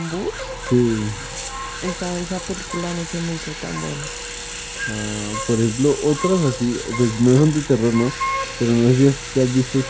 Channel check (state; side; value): identical; both; correlation 1.00